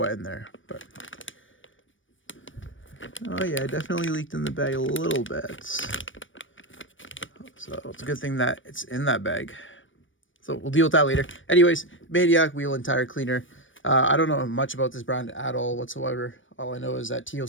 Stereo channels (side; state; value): right; late; 0.56 ms